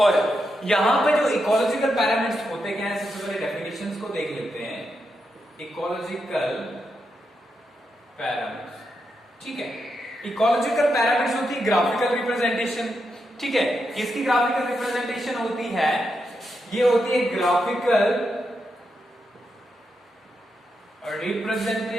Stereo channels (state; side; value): normal; both; correlation 0.85